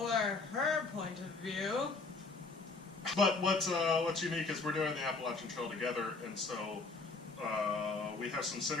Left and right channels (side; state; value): right; quieter; 3.8 dB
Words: her point of view. But what's unique is we're doing the Appalachian Trail together, and so we have some